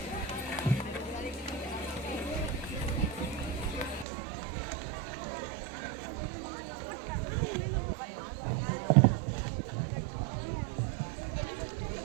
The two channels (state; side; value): drops out; left; at 4.0 s